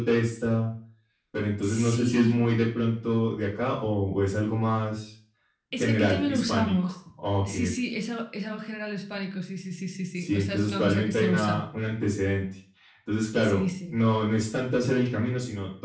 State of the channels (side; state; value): both; identical; correlation 1.00